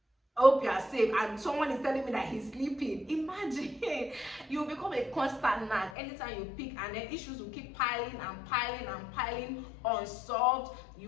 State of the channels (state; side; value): drops out; right; at 6.0 s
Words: Hope you are safe, and someone is telling me that he's sleeping. Imagine, you become a constant nag. Anytime you pick, and then issues will keep piling unsolved.